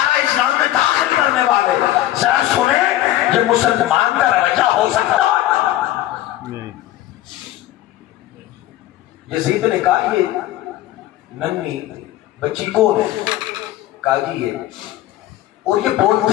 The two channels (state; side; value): quieter; right; 14.4 dB